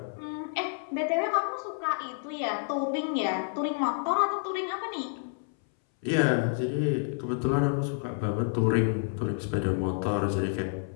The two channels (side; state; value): right; silent; 58 dB below the other